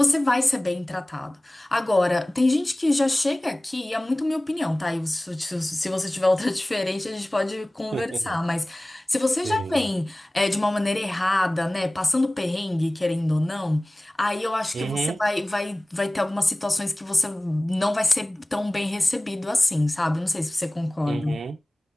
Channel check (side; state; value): both; normal; correlation 0.98